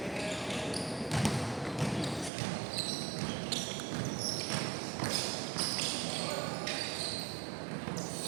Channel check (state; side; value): drops out; left; at 2.3 s